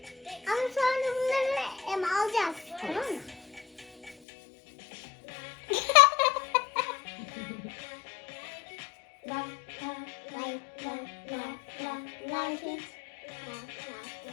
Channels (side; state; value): right; drops out; at 4.2 s